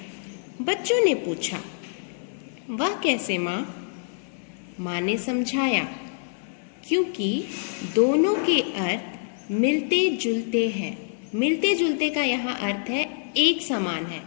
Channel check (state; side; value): silent; right; 61 dB below the other